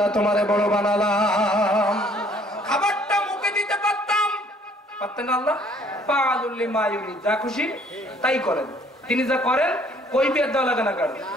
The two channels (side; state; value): both; normal; correlation 0.60